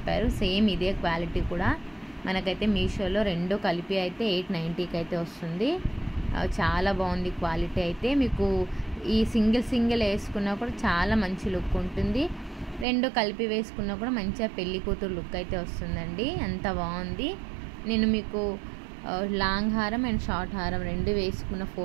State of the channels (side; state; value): left; drops out; at 12.9 s